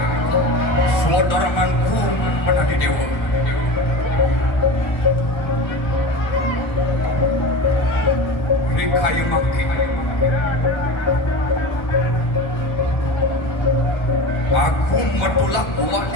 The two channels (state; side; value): late; right; 1.3 ms